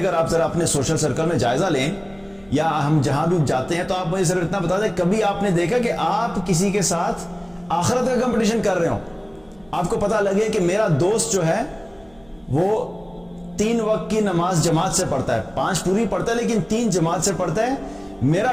آپ ذرا اپنے سوشل سرکل میں جائزہ لیں یا ہم جہاں بھی جاتے ہیں تو آپ مجھے صرف اتنا بتا دیں، کبھی آپ نے دیکھا کہ آپ کسی کے ساتھ آخرت کا کمپٹیشن کر رہے ہو؟ آپ کو پتہ لگے کہ میرا دوست جو ہے وہ 3 وقت کی نماز جماعت سے پڑھتا ہے، 5 پوری پڑھتا ہے لیکن 3 جماعت سے پڑھتا ہے،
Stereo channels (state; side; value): noise; right; hum, 29 dB below the sound